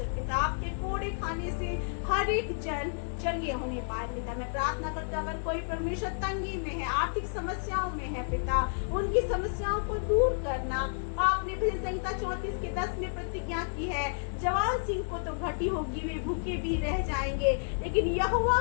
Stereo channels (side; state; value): right; silent; digital silence